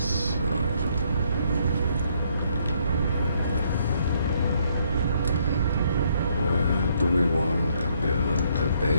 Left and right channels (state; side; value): inverted; both; correlation -0.70